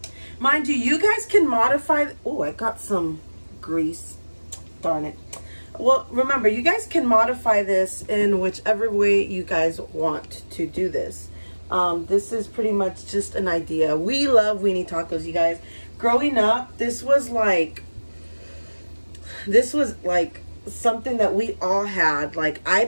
Mind you, you guys can modify. Oh, I got some grease. Darn it. Well, remember, you guys can modify this in whichever way you guys want to do this. This is pretty much just an idea. We love weenie tacos, you guys. Growing up, this was like something that we all had. Like, I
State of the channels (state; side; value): inverted; both; correlation -1.00